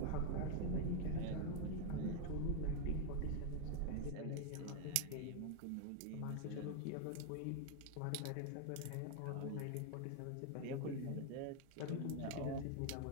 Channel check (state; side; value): different; both; correlation 0.00